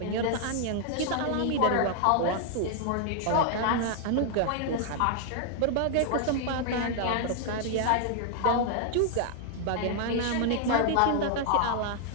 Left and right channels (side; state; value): both; different; correlation 0.00